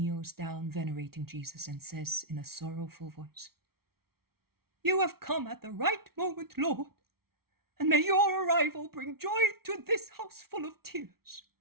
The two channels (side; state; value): left; late; 0.94 ms